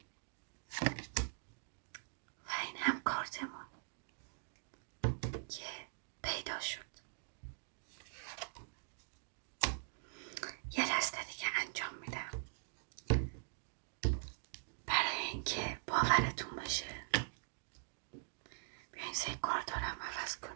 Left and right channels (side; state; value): left; silent; digital silence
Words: و این هم کارتمون که پیدا شد. یه دسته دیگه انجام میدم برای اینکه باورتون بشه. بیاین سه کارت رو هم عوض